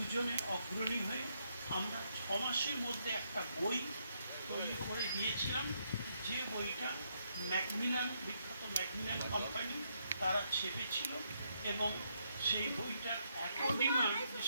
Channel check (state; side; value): inverted; both; correlation -0.77